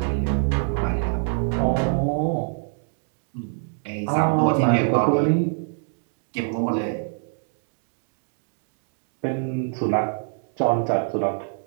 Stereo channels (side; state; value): left; silent; digital silence